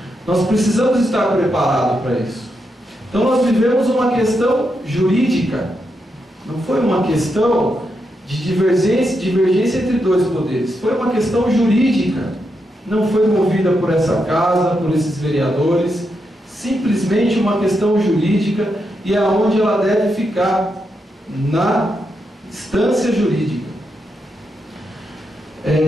nós precisamos estar preparados para isso. Então nós vivemos uma questão jurídica, não foi uma questão de divergência entre dois poderes, foi uma questão jurídica, não foi movida por essa casa, por esses vereadores, simplesmente uma questão jurídica, e é onde ela deve ficar, na instância jurídica.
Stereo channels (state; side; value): normal; both; correlation 0.83